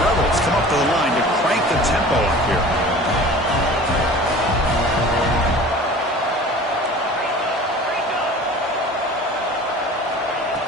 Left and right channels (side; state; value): both; normal; correlation 0.42